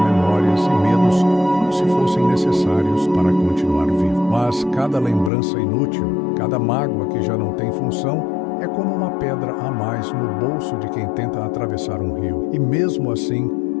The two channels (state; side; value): drops out; right; at 5.3 s